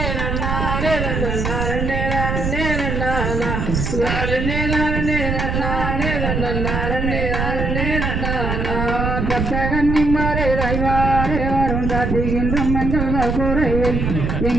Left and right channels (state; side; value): noise; right; rumble, 1 dB below the sound